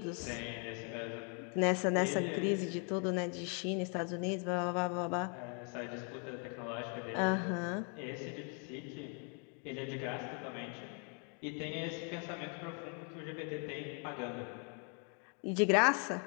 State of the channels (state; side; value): quieter; right; 39.8 dB